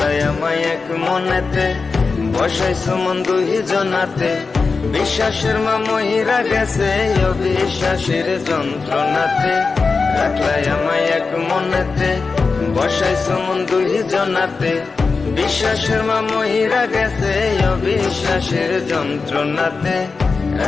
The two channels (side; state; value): right; quieter; 4.5 dB